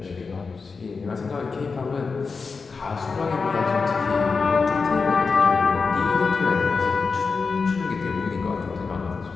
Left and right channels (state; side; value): quieter; right; 4.7 dB